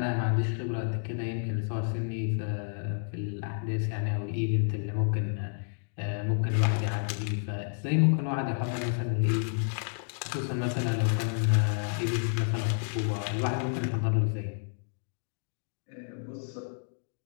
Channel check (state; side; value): silent; right; digital silence